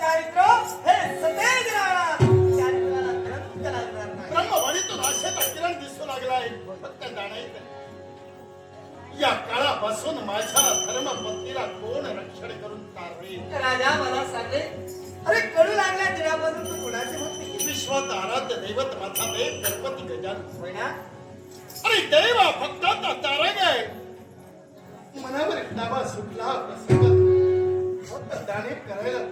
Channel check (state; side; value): identical; both; correlation 1.00